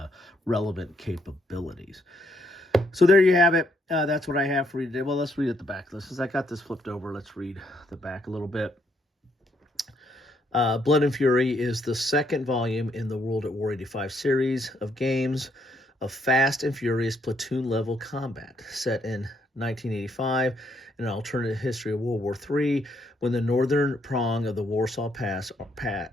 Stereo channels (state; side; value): normal; both; correlation 0.73